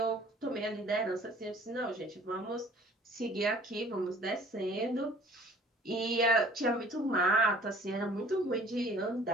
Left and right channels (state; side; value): normal; both; correlation 0.52